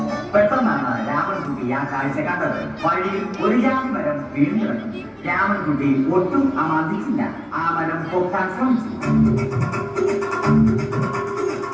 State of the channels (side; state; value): both; identical; correlation 1.00